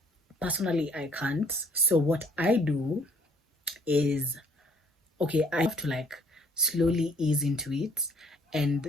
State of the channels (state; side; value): normal; both; correlation 0.61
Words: Personally, I can't. So what I do is, okay, I have to like slowly ease into it and